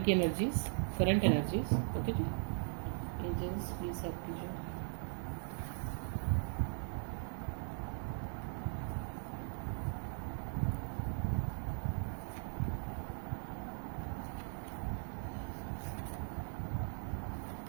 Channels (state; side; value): silent; left; digital silence